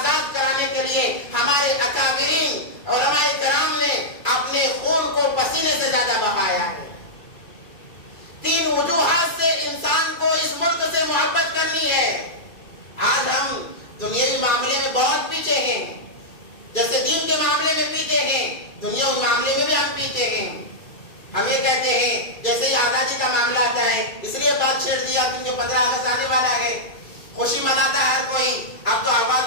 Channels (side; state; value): right; late; 2.3 ms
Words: کرانے کے لیے ہمارے اکابرین علماء کرام نے اپنے خون کو پسینے سے زیادہ بہایا ہے۔ تین وجوہات سے انسان کو اس ملک سے محبت کرنی ہے۔ آج ہم دنیاوی معاملے میں بہت پیچھے ہیں، جیسے دین کے معاملے میں پیچھے ہیں، دنیاوی معاملے میں بھی ہم پیچھے ہیں۔ ہم یہ کہتے ہیں جیسے ہی آزادی کا معاملہ آتا ہے اس لیے بات چھیڑ دیا کیونکہ 15 اگست آنے والا ہے، خوشی مناتا ہے ہر کوئی، اب تو